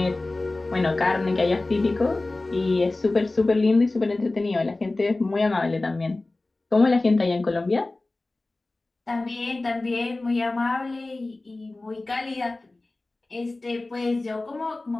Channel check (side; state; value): right; quieter; 3.0 dB